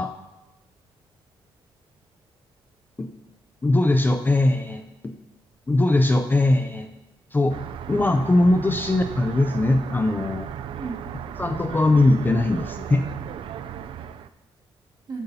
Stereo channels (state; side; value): normal; both; correlation 0.91